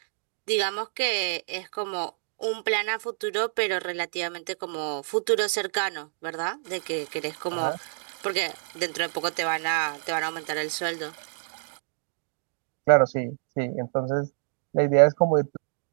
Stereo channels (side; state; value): left; silent; digital silence